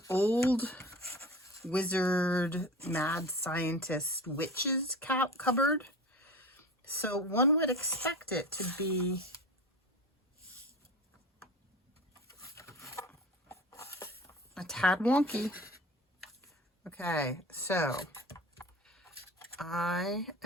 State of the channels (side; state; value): both; normal; correlation 0.35